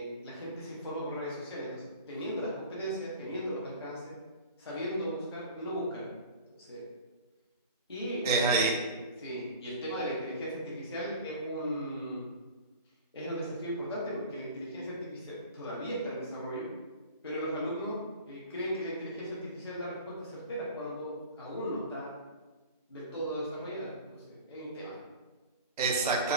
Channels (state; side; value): inverted; both; correlation -0.38